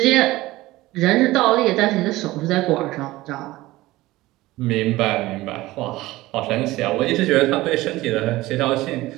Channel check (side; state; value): left; quieter; 18.2 dB